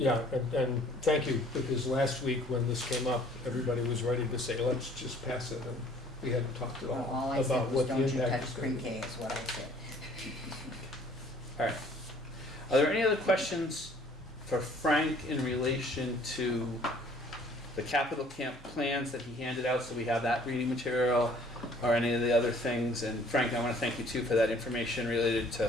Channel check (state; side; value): normal; both; correlation 0.56